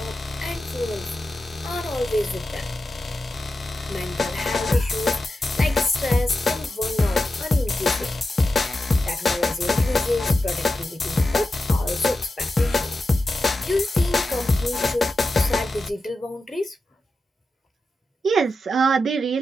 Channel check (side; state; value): both; normal; correlation 0.90